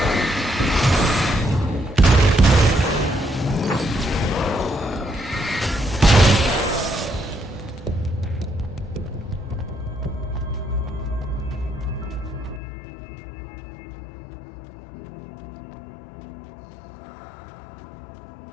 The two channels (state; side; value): drops out; right; at 12.6 s